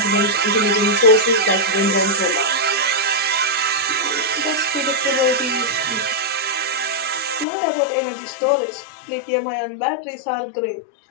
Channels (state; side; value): drops out; right; at 7.5 s